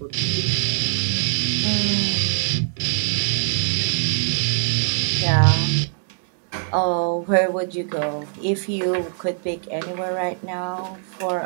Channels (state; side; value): silent; left; digital silence